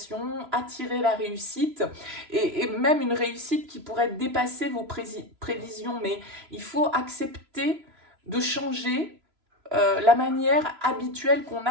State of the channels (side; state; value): left; late; 3.0 ms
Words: attirer la réussite, et même une réussite qui pourrait dépasser vos prévisions, mais il faut accepter de changer la manière habituelle qu'on